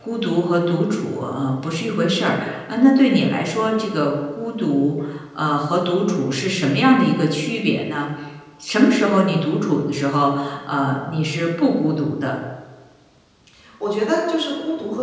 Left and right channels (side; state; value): both; identical; correlation 1.00